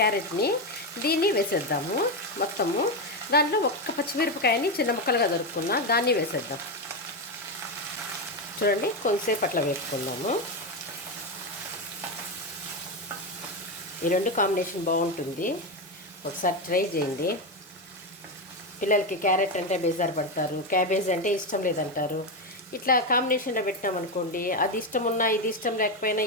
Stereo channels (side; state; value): both; normal; correlation 0.10